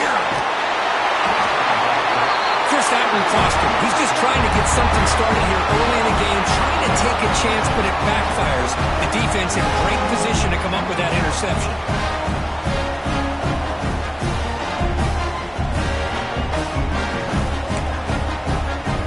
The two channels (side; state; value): both; identical; correlation 1.00